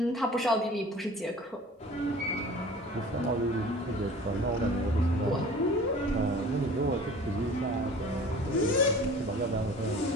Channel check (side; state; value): both; normal; correlation 0.44